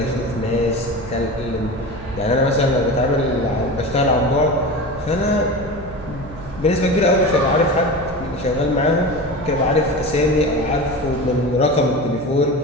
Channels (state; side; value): noise; right; hum, 15 dB below the sound